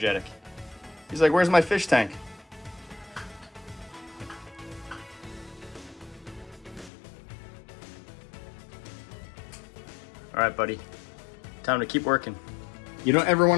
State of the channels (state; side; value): drops out; right; at 6.9 s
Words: He's like, where's my fish tank? All right, buddy, time to keep working. You don't ever want